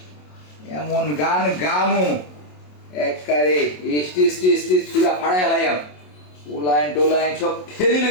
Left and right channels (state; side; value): late; right; 27 ms